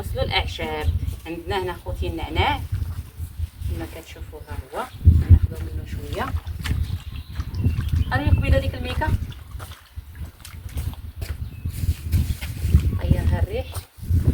الاعشاب. عندنا هنا خوتي النعناع كما كتشوفوا ها هو ناخذو منه شويه. راني قبيله ديك الميكه غيرها الريح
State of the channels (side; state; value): both; identical; correlation 1.00